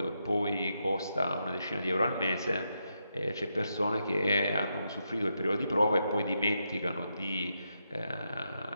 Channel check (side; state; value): both; inverted; correlation -0.83